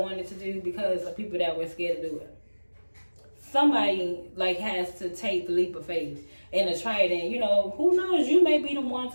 to do because of people that were scared to do it. Somebody, like, has to take the leap of faith and to try it. And, you know, who knows, you may be the one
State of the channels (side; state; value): both; inverted; correlation -1.00